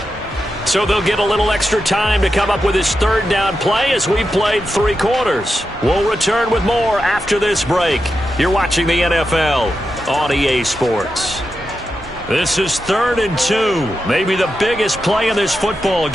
So they'll get a little extra time to come up with his third down play as we've played 3 quarters. We'll return with more after this break. You're watching the NFL on EA Sports. This is 3rd and 2. Maybe the biggest play in this football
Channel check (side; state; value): both; normal; correlation 0.88